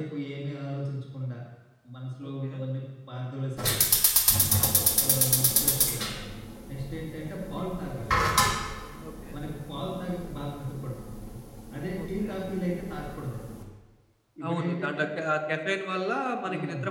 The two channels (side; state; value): both; identical; correlation 1.00